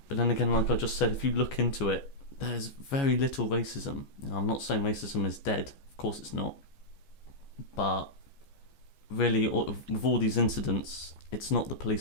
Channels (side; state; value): right; late; 14 ms